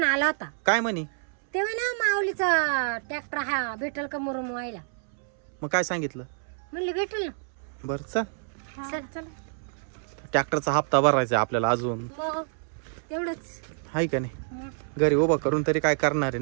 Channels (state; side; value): silent; left; 60 dB below the other